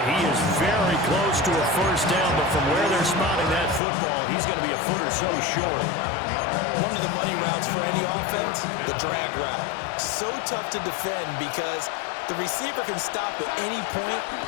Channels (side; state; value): right; drops out; at 3.8 s